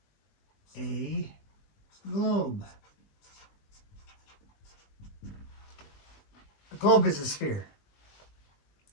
a globe. A globe is a sphere.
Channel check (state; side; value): late; right; 20 ms